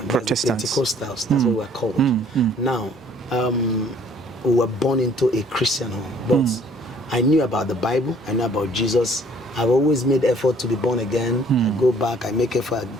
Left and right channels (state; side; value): normal; both; correlation 0.58